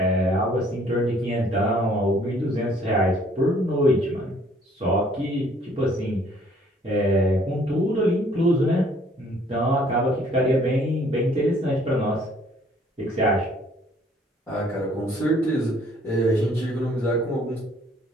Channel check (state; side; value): normal; both; correlation 0.60